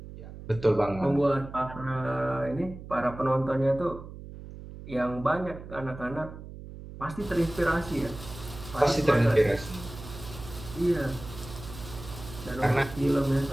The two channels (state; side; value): noise; right; hum, 13 dB below the sound